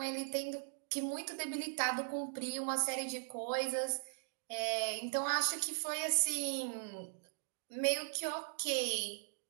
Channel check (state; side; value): silent; left; digital silence